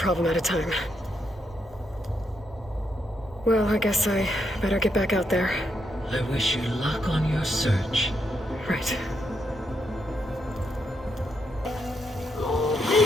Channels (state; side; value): normal; both; correlation 0.80